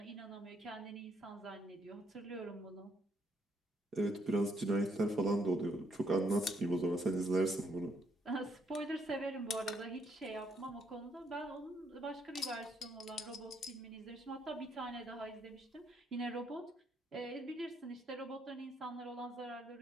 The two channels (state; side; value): normal; both; correlation 0.71